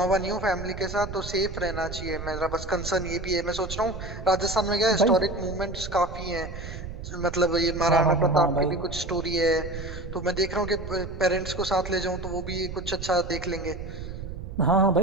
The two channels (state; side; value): noise; right; rumble, 9 dB below the sound